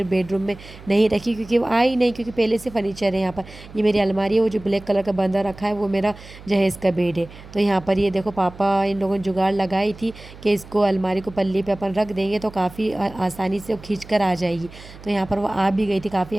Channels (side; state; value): right; noise; hum, 18 dB below the sound